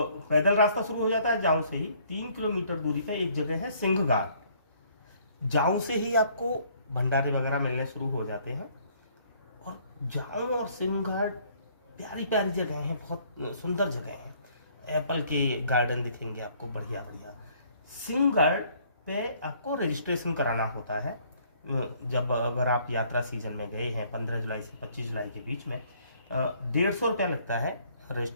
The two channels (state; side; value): inverted; both; correlation -0.62